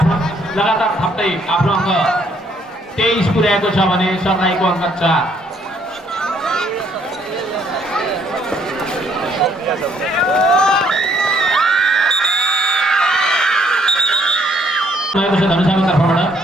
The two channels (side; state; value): both; normal; correlation 0.66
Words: लगातार थप्दै आफ्नो अङ्क 23 पुर्याएको छ भने सरलाईको अङ्क 4। भएको छ धनुषाको तर्फबाट।